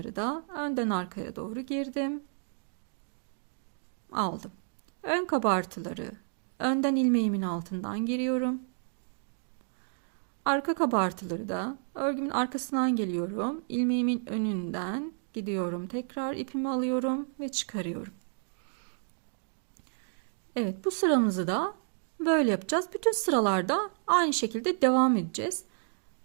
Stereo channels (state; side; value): silent; left; digital silence